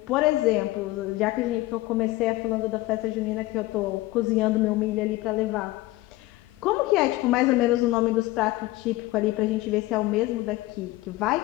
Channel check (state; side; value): quieter; right; 18.7 dB